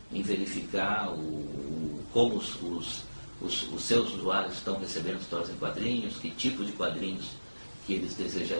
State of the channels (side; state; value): both; inverted; correlation -1.00